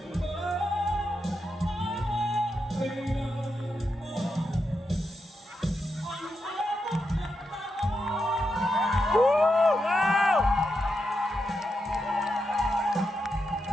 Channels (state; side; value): normal; both; correlation 0.85